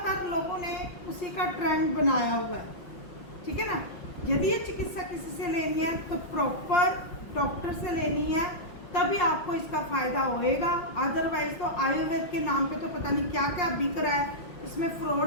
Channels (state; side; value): late; right; 5.6 ms